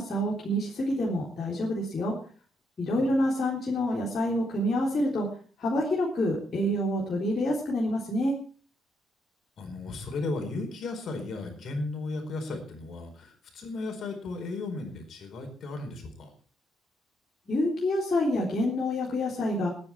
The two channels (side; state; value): both; normal; correlation 0.77